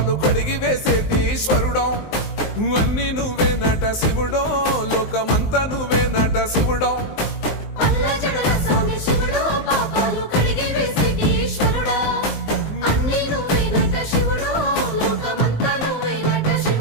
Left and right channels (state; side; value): late; right; 19 ms